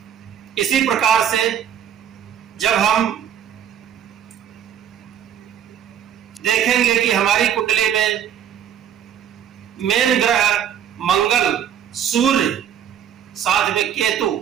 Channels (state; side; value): quieter; left; 9.4 dB